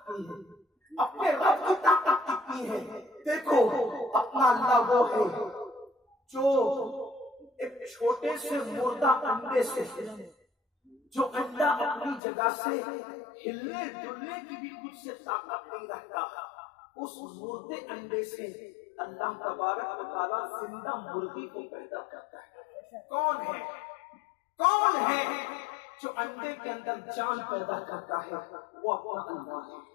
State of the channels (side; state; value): right; drops out; at 12.2 s